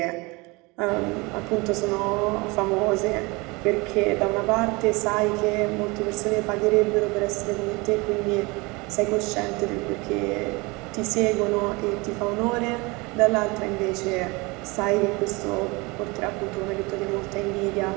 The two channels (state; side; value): quieter; left; 25.6 dB